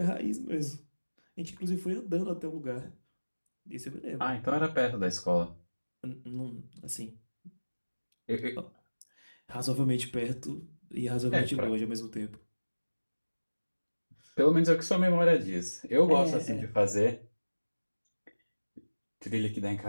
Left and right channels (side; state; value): both; inverted; correlation -1.00